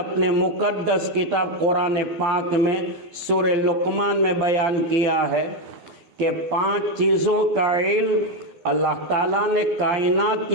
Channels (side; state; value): left; late; 12 ms